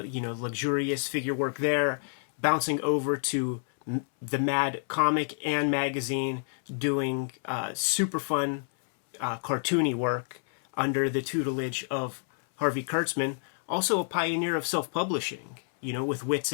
luxurious figure work there, bouncing over to the Mad comic and magazine, doing super fun cartoony work under the tutelage of Harvey Kurtzman. Also a pioneer of self-publishing, with Wits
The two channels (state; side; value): silent; right; 59 dB below the other